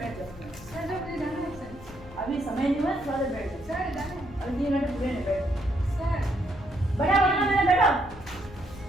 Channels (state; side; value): normal; both; correlation 0.74